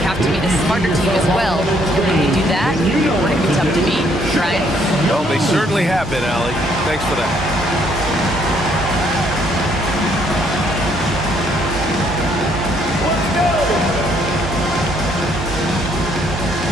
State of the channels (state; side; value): normal; both; correlation 0.67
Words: have to be the smarter team as well. And when we do that, we're going to be tough to beat. Brian? Well, they certainly have been, Allie. Thanks for that.